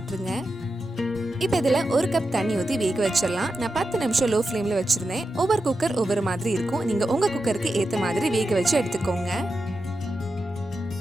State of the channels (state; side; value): normal; both; correlation 0.89